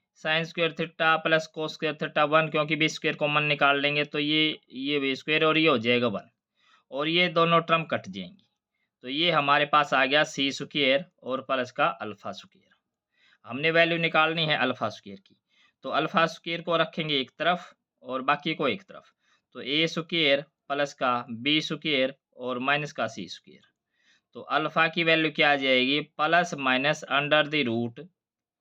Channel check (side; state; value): both; identical; correlation 1.00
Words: sine square theta plus cos square theta 1, क्योंकि b² कॉमन निकाल लेंगे तो ये b² और ये हो जाएगा 1, और ये दोनों टर्म कट जाएंगी। तो ये हमारे पास आ गया c² और प्लस का अल्फा स्क्वेयर। हमने वैल्यू निकालनी है अल्फा स्क्वेयर की, तो अल्फा स्क्वेयर को रखेंगे एक तरफ और बाकी को एक तरफ। तो a² प्लस का b² और माइनस का c²। तो अल्फा की वैल्यू क्या आ जाएगी, plus minus under the root